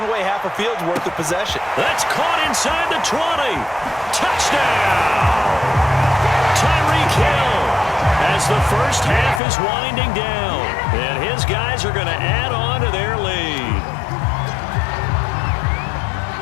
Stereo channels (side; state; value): right; drops out; at 9.4 s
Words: away half a field's worth of possession. That's caught inside the 20. Touchdown! Tyreek Hill as the first half is winding down. And his guys are going to add on to their lead.